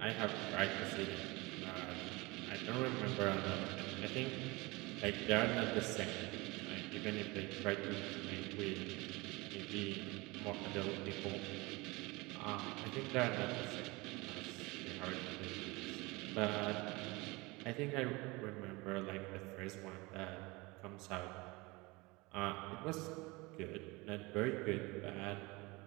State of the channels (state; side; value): quieter; left; 24.0 dB